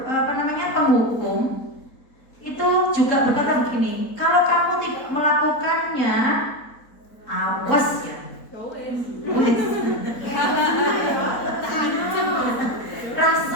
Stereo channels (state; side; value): late; right; 4.1 ms